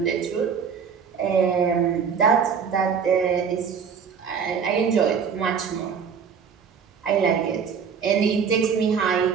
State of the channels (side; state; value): left; quieter; 6.6 dB